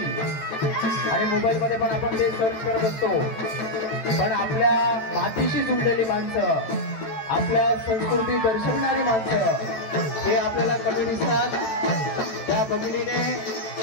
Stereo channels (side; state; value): right; late; 13 ms